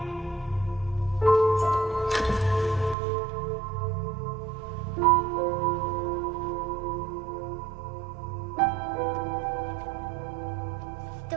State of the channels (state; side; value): drops out; left; at 3.0 s